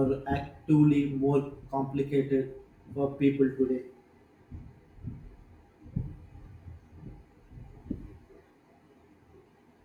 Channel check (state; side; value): identical; both; correlation 1.00